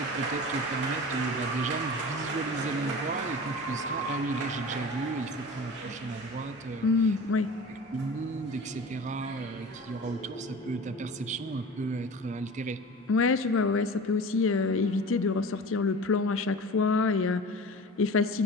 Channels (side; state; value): both; normal; correlation 0.36